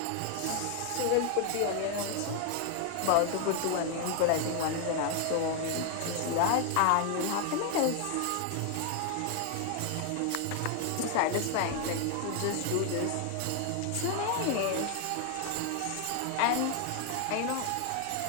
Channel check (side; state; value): both; different; correlation 0.00